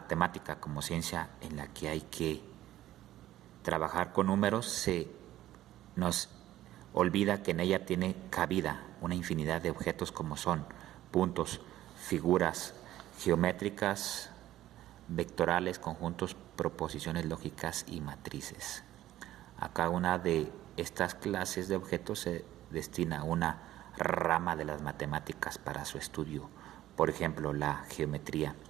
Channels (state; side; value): quieter; left; 14.0 dB